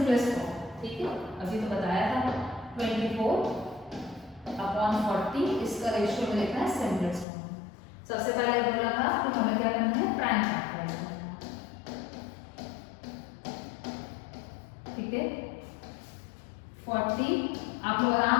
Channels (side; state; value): right; drops out; at 7.2 s